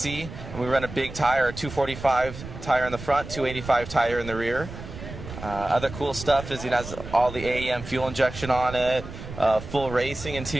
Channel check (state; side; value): noise; right; rumble, 11 dB below the sound